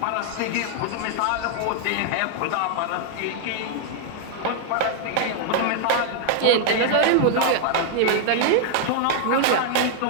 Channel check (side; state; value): both; different; correlation 0.00